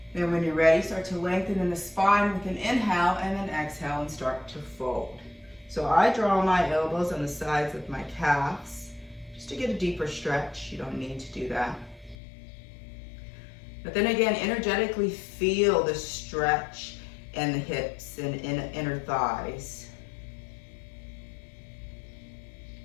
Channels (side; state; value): right; drops out; at 12.2 s